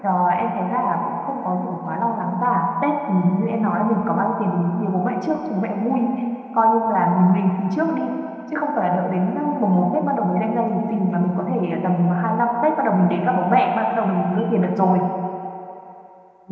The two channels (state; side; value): identical; both; correlation 1.00